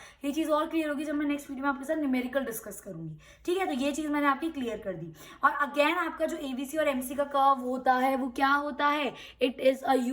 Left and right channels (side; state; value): both; identical; correlation 1.00